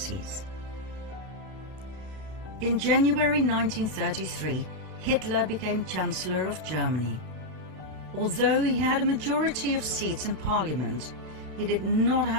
In January 1933, Hitler became Chancellor of Germany. Although he had a majority of seats in Parliament, he did not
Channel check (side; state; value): left; late; 32 ms